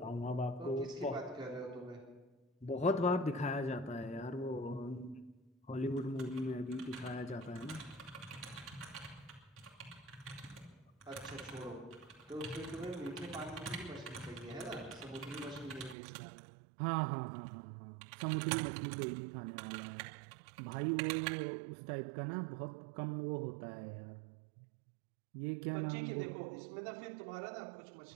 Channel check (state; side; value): drops out; left; at 16.0 s